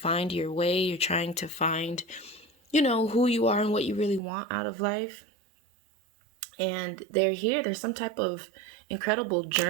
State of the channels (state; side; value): drops out; left; at 4.2 s